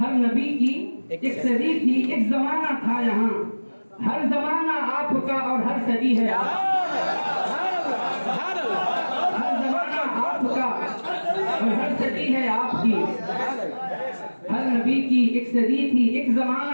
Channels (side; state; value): both; inverted; correlation -1.00